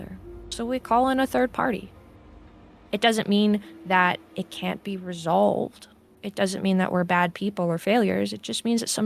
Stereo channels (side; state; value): both; identical; correlation 1.00